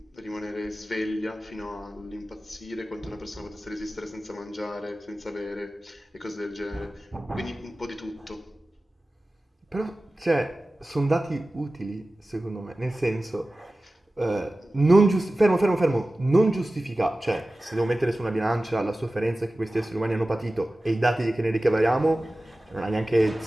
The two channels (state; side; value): normal; both; correlation 0.96